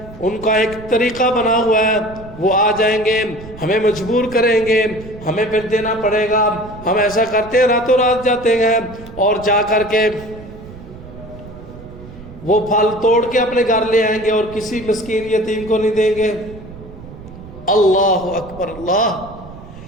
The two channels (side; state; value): right; noise; rumble, 16 dB below the sound